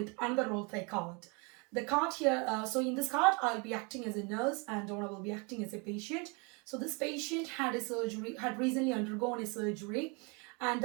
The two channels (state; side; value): quieter; left; 31.5 dB